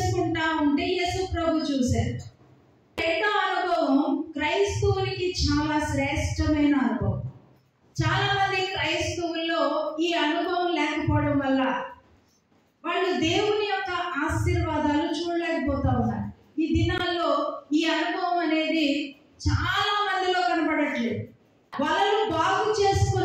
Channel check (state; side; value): identical; both; correlation 1.00